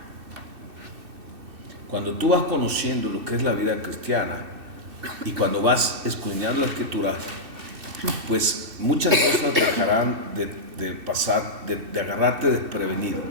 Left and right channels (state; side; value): late; left; 2.6 ms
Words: Cuando tú vas conociendo lo que es la vida cristiana y cuando vas escudriñando la Escritura, pues muchas cosas dejarán de pasar, de agarrarte desprevenido.